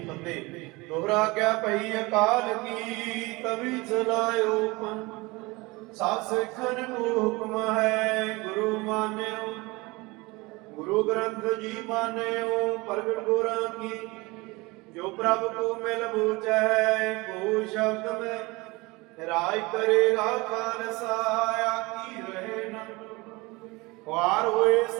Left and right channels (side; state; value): left; quieter; 23.7 dB